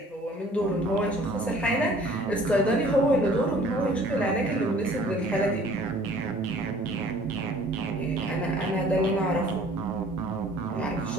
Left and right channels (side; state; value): both; normal; correlation 0.53